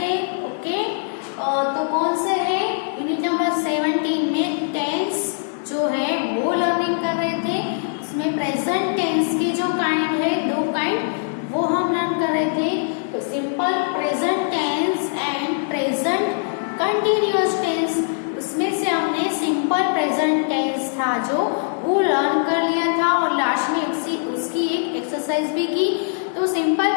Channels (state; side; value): silent; right; digital silence